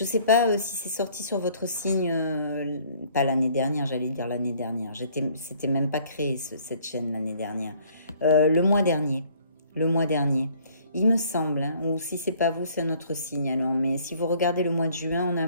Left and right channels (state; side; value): inverted; both; correlation -0.59